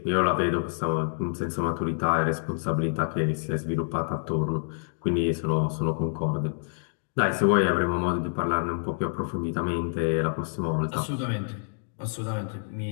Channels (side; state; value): right; silent; digital silence